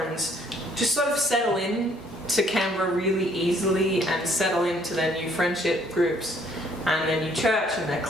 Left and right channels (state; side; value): normal; both; correlation 0.63